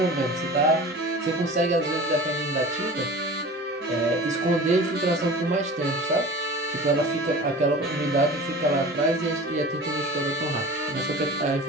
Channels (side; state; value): both; normal; correlation 0.38